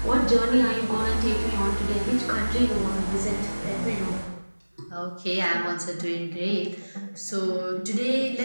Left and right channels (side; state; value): both; inverted; correlation -1.00